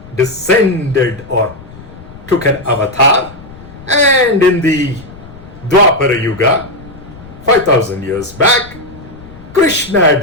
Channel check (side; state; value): left; noise; rumble, 18 dB below the sound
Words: descended or took an avatar, and in the Dwapara Yuga, 5000 years back, Krishna